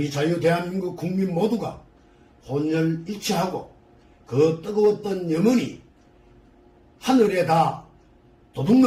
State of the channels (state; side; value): identical; both; correlation 1.00